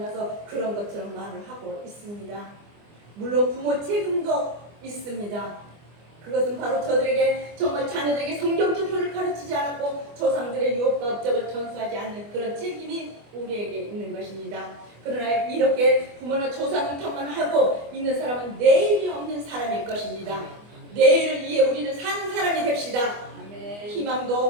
그런 것처럼 말을 하고 있습니다. 물론 부모 책임도 있습니다. 그것은 바로 저들에게 정말 자녀들에게 성경적 표를 가르치지 않았고 조상들의 유업과 업적을 전수하지 않는 그런 책임이 우리에게 있는 것입니다. 그러나 이렇게 부모나 조상 탓만 하고 있는 사람은 내일이 없는 사람일 것입니다. 내일을 위해 우리는 사는 사람이 됩시다.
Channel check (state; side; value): late; left; 24 ms